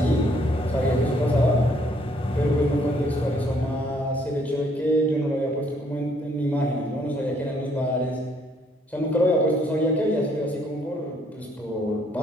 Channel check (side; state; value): both; normal; correlation 0.66